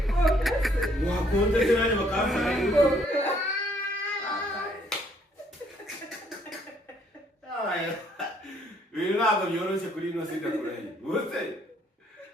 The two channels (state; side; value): normal; both; correlation 0.66